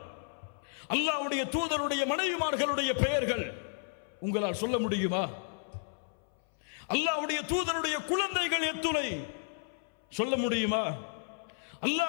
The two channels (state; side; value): silent; right; 56 dB below the other